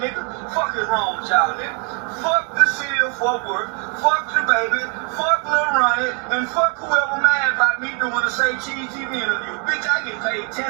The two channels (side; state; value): left; quieter; 37.1 dB